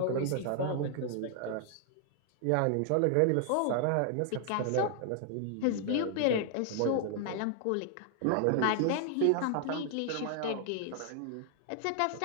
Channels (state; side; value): different; both; correlation 0.00